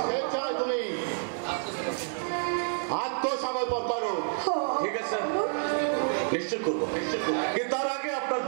স্বেচ্ছায় তুমি আত্মসমর্পণ করো। ঠিক আছে নিশ্চয় করবো, কিন্তু তার আগে আপনার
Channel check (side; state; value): left; silent; 59 dB below the other